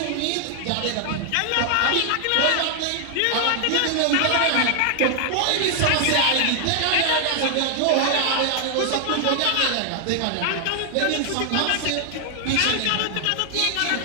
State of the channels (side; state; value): both; different; correlation 0.00